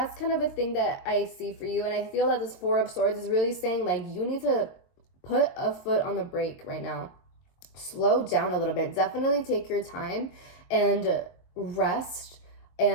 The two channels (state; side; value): late; right; 23 ms